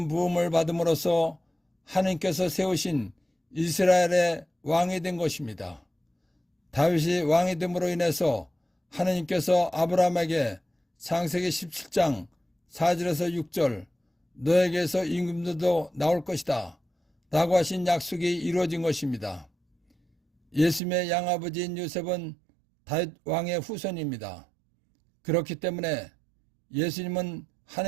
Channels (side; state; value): left; drops out; at 20.8 s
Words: 부음을 받음으로써 하나님께서 세우신 이스라엘의 왕이 된 것입니다. 다윗이 왕이 됨으로 인해서 하나님께서 아브라함에게 창세기 17장 4절에서 6절 너에게서 임금들도 나올 것이다 라고 하신 약속이 이루어진 것입니다. 예수님의 양아버지인 요셉은 다윗 왕의 후손입니다. 그렇기 때문에 예수님은